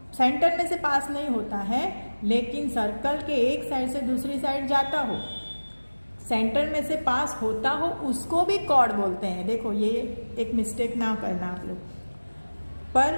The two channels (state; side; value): inverted; both; correlation -1.00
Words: सेंटर में से पास नहीं होता है, लेकिन सर्कल के एक साइड से दूसरी साइड जाता हो, सेंटर में से पास होता हो, उसको भी कॉर्ड बोलते हैं। देखो ये एक मिस्टेक ना करना आप लोग।